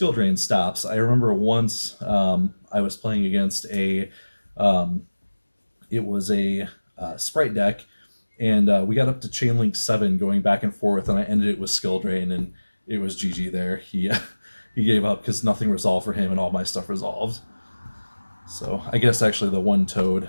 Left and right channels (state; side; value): inverted; both; correlation -1.00